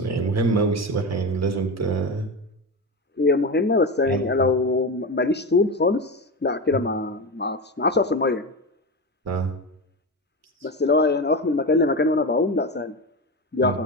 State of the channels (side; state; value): both; normal; correlation 0.20